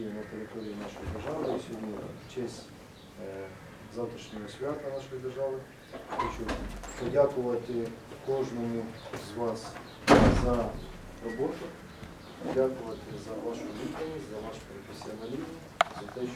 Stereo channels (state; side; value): identical; both; correlation 1.00